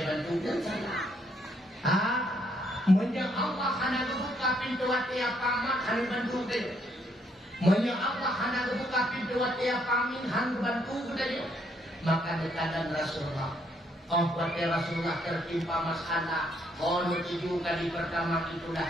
bantu dan salah. Menjak Allah hendak buka pintu hati paman hendak bantu dia. Menjak Allah hendak buka pintu hati paman hendak bantu dia. Maka dekatan Rasulullah. Waktu Rasulullah tertimpa masalah, tujuh kali pertama itulah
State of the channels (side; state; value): both; normal; correlation 0.72